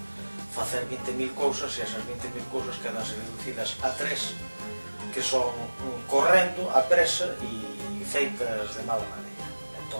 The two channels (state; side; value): inverted; both; correlation -1.00